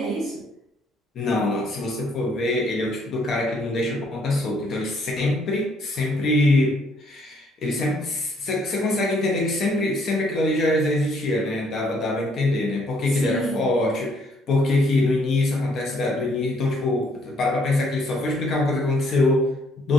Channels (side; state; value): both; normal; correlation 0.67